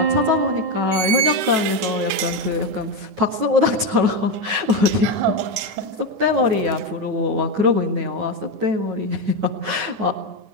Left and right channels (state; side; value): late; left; 9.3 ms